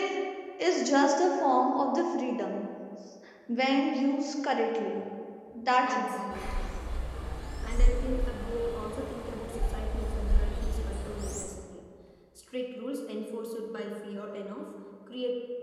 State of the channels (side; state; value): both; identical; correlation 1.00